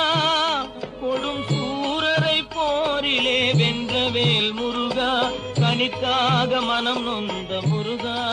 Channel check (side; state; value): both; identical; correlation 1.00